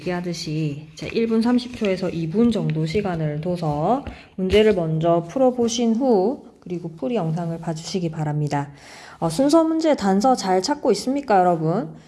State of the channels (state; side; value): identical; both; correlation 1.00